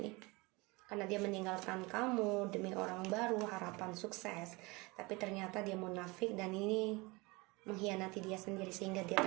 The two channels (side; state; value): left; quieter; 24.9 dB